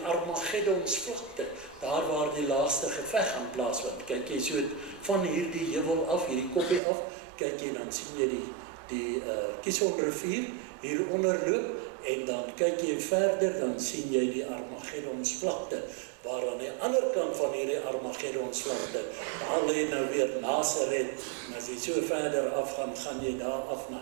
Armageddonsvlakte, daar waar die laaste geveg gaan plaasvind. Kyk jy so van hierdie heuwel af, hierdie koppie af, kyk jy, dan sien jy die Kison rivier hieronder loop, en dan kyk jy verder, dan sien jy die Armageddonsvlakte, waar aan die ander kant van hierdie Armageddonsvlakte, daar lê nou weer Nasaret, en as jy so verder afgaan, gaan jy daar af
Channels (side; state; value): left; drops out; at 6.8 s